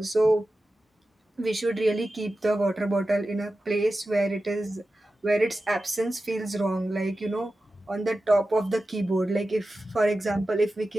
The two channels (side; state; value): both; normal; correlation 0.93